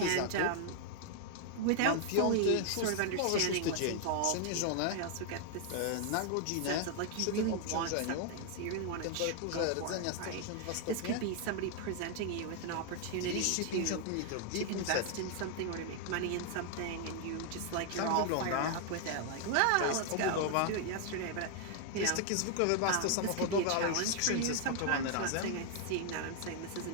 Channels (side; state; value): both; different; correlation 0.00